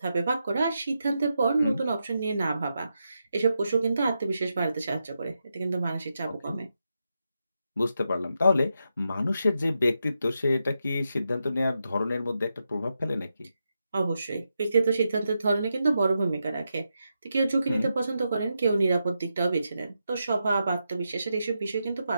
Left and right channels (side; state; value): both; inverted; correlation -0.86